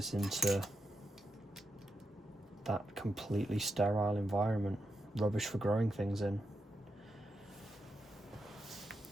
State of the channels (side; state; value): both; normal; correlation 0.85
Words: into that completely sterile environment, rubbish for growing things in.